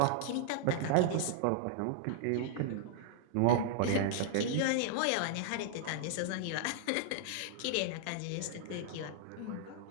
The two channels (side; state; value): both; different; correlation -0.01